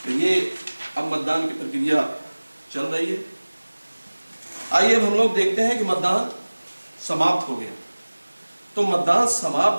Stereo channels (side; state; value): both; inverted; correlation -1.00